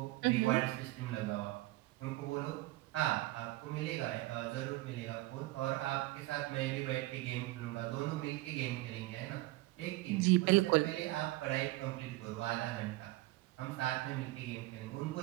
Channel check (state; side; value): quieter; left; 19.2 dB